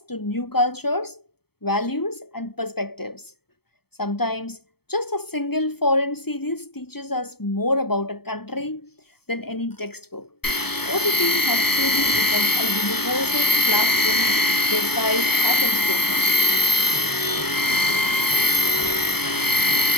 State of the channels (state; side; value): late; right; 0.96 ms